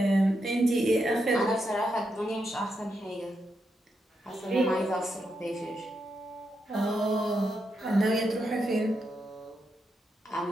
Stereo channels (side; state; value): both; normal; correlation 0.83